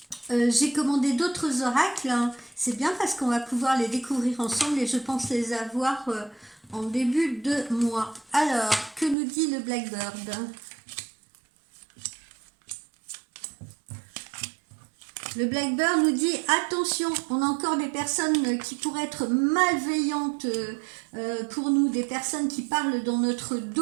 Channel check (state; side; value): drops out; left; at 9.2 s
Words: J'ai commandé d'autres oracles, hein. C'est bien parce qu'on va pouvoir les découvrir ensemble et je pense les avoir en début de mois. Alors, que nous dit le Blackbird ? Le Blackbird nous dit attention, on a encore des personnes qui pourraient être malveillantes pour nous, des personnes qui parlent dans notre